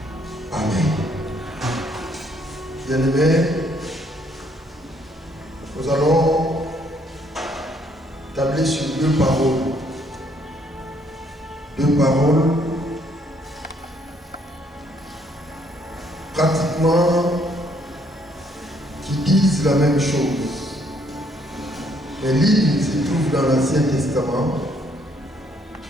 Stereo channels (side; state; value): both; normal; correlation 0.67